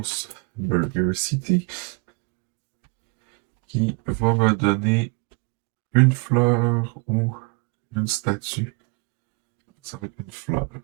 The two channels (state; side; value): quieter; left; 32.5 dB